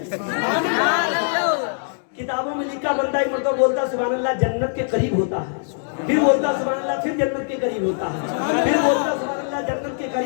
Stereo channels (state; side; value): silent; right; digital silence